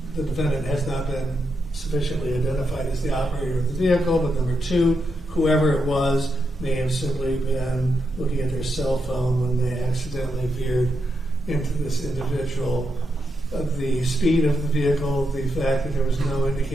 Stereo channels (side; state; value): both; normal; correlation 0.84